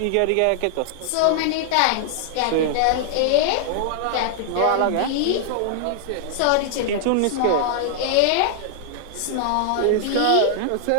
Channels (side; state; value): both; different; correlation 0.00